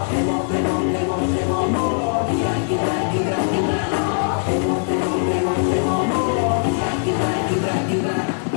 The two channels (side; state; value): right; silent; 63 dB below the other